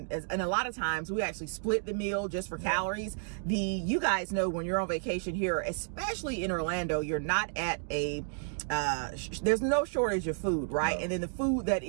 a lot of times we actually split the meal just for calories. You guys know when you're on vacation here, especially in Orlando, you're not at a there's no shortage of food, right? And then the food that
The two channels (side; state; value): left; silent; digital silence